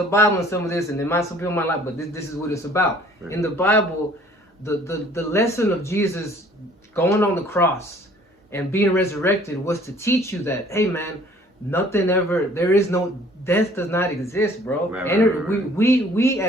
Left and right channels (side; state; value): both; normal; correlation 0.55